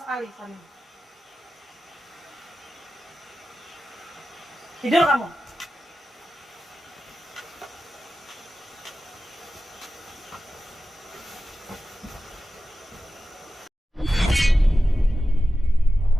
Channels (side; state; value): both; normal; correlation 0.93